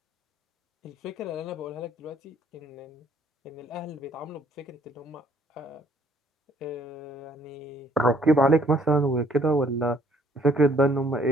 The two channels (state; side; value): normal; both; correlation 0.62